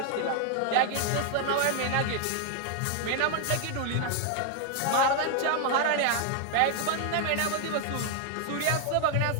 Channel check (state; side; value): different; both; correlation 0.00